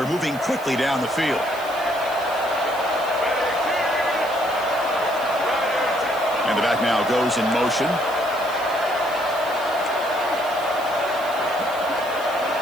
moving quickly down the field. And the back now goes in motion.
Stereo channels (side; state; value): right; noise; hiss, 18 dB below the sound